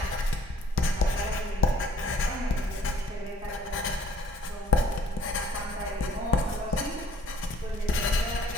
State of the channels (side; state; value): both; normal; correlation 0.59